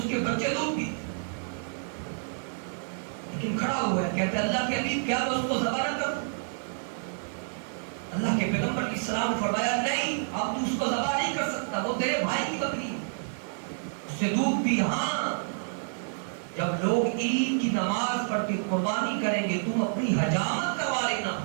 کے بچے دودھ پیتے، لیکن کھڑا ہوا ہے کہتے اللہ کے حبیب کیا میں اس کو ذبح نہ کروں؟ اللہ کے پیغمبر علیہ السلام نے فرمایا نہیں، اب تو اس کو ذبح نہیں کر سکتا، وہ تیرے بھائی کی بکری ہے، اس سے دودھ پی. ہاں جب لوگ عید کی نماز پڑھ کے قربانی کریں گے تم اپنی حجامت کروا لینا،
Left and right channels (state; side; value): silent; left; digital silence